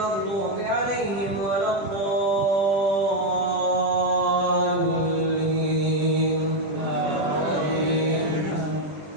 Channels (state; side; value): late; left; 20 ms